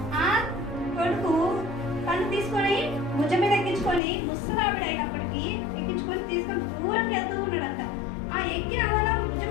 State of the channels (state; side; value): drops out; right; at 4.0 s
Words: ఆ కొడుకు తను తీసుకొని భుజం మీద ఎక్కించుకొని ముసలావిడ అయినప్పటికీ ఎక్కించుకొని తీసుకొని దూరంగా వెళ్తూ ఉన్నాడంట. ఆ ఎక్కిన అలా భుజం